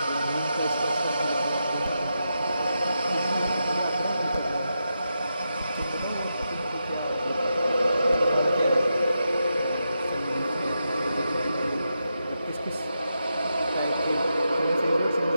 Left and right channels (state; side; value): inverted; both; correlation -0.86